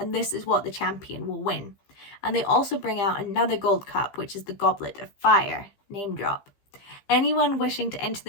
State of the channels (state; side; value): late; right; 15 ms